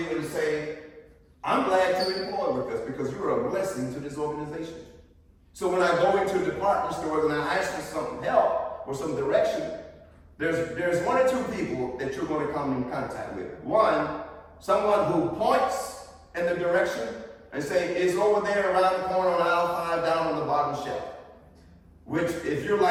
and say, I'm glad to employ with us because you're a blessing to this organization. So when I go into department stores and I ask for some help or some direction, there's one or two people that you're going to come in contact with. One, someone who points in the direction and say, it's over there around the corner on aisle 5 down on the bottom shelf. Which, if you're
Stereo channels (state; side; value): identical; both; correlation 1.00